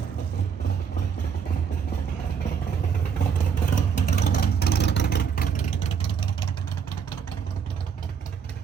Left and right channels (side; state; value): left; quieter; 7.0 dB